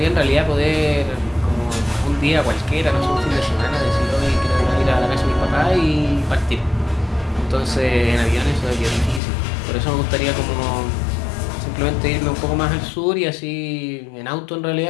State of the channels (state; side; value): drops out; right; at 9.2 s